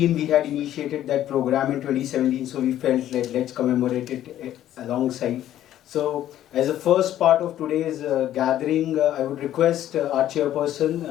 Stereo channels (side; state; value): right; quieter; 12.2 dB